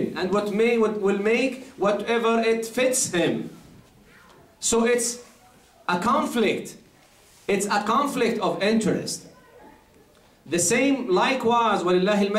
and what will make whatever it fits him. So it's a conflict. It's a conflict of interest. The same likewise, وَلِلَّهِ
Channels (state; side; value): identical; both; correlation 1.00